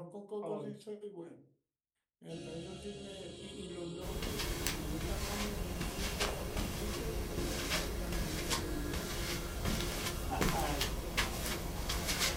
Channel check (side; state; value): both; identical; correlation 1.00